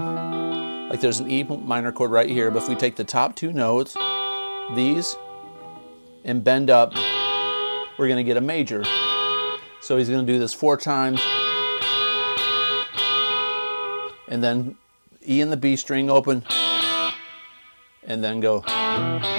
there's an E minor chord right here, but if we take the top 2 notes, these, and bend up, we're going to get a major. So he's going to do this 4 times, and then E in the B string open, and then go. I'm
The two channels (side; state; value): both; inverted; correlation -1.00